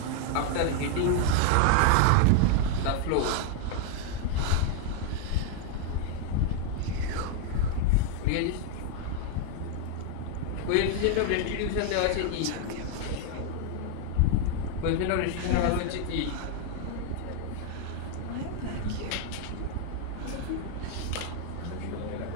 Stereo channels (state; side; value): different; both; correlation 0.00